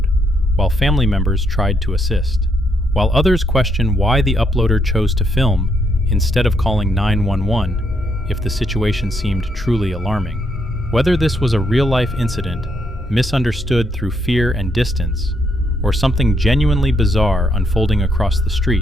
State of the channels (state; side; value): normal; both; correlation 0.76